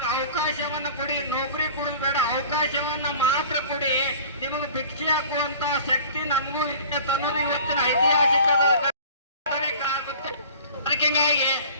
ಅವಕಾಶವನ್ನ ಕೊಡಿ, ನೌಕರಿ ಕೊಡೋದು ಬೇಡ, ಅವಕಾಶವನ್ನ ಮಾತ್ರ ಕೊಡಿ. ನಿಮಗೆ ಭಿಕ್ಷೆ ಹಾಕುವಂತ ಶಕ್ತಿ ನಮಗೂ ಇದೆ ಅನ್ನೋದು ಇವತ್ತಿನ ಐತಿಹಾಸಿಕ ಆಗುತ್ತೆ. ಅದಕ್ಕೆ ಹಿಂಗಾಗಿ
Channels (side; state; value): both; inverted; correlation -0.44